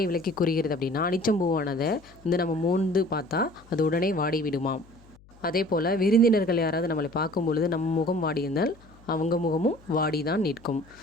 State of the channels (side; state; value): left; noise; hum, 26 dB below the sound